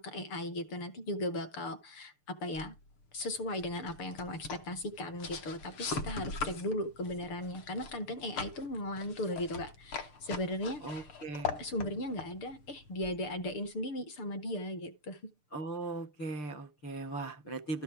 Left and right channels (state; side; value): late; right; 6.7 ms